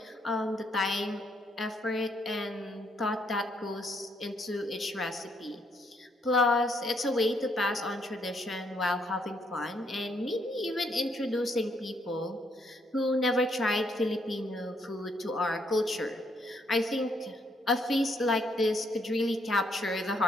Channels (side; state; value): both; normal; correlation 0.72